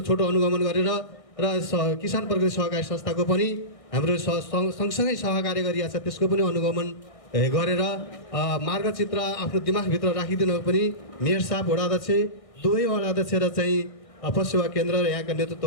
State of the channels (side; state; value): right; late; 1.6 ms